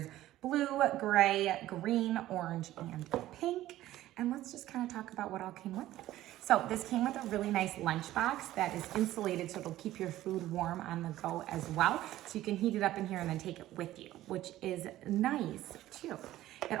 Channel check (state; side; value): quieter; left; 14.7 dB